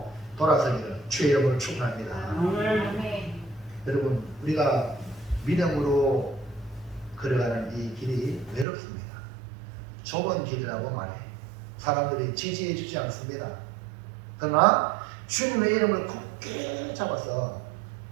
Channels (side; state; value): left; drops out; at 8.7 s